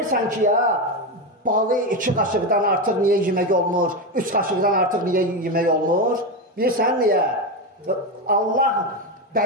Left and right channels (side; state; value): both; normal; correlation 0.13